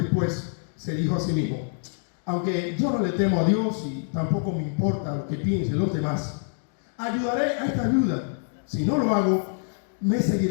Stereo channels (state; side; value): silent; right; 60 dB below the other